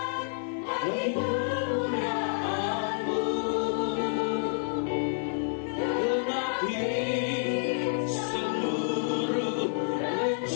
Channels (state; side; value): silent; right; 59 dB below the other